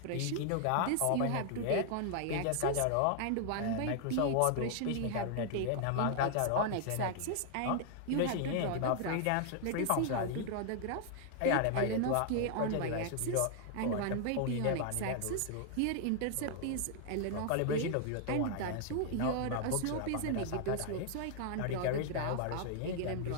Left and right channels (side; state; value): both; different; correlation 0.00